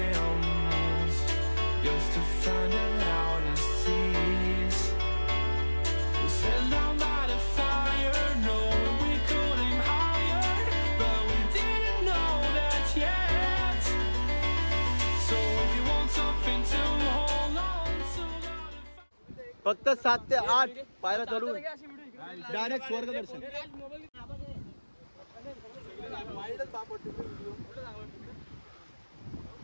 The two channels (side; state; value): both; inverted; correlation -1.00